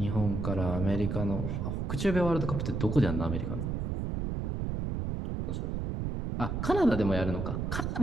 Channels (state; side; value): noise; right; rumble, 2 dB below the sound